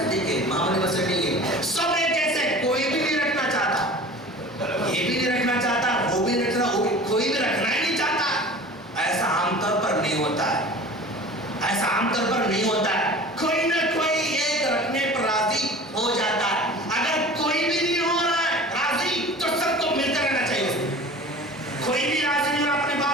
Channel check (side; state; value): both; normal; correlation 0.40